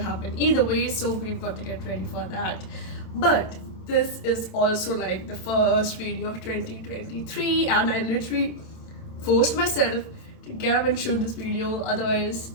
either way, so we've got to get ready for that. But this is also like the first video of 2023, and I literally forced myself to get up and shoot this video, otherwise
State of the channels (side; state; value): right; late; 27 ms